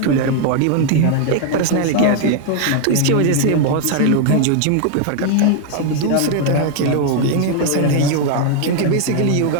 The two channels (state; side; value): different; both; correlation 0.00